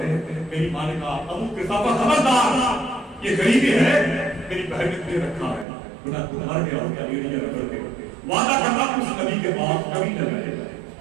ہیں میری ماں نے کہا ابو قحافہ خبردار یہ غریبی ہے, میری بہن نے تجھے رکھا ہے, بنا تو مر گیا اور کیا ایڑیاں رگڑ کے وعدہ کرنا اس نبی کے پاس کبھی نہ جائے گا,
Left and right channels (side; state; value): left; drops out; at 5.7 s